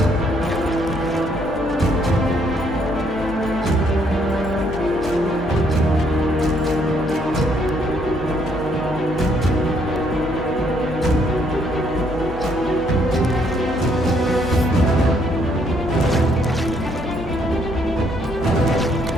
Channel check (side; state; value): left; noise; hum, 12 dB below the sound